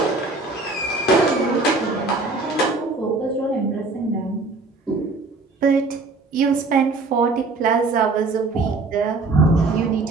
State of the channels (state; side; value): quieter; left; 3.6 dB